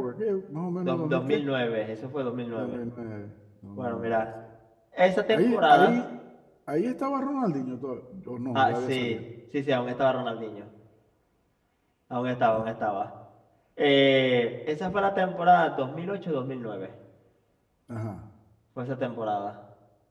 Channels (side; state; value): both; identical; correlation 1.00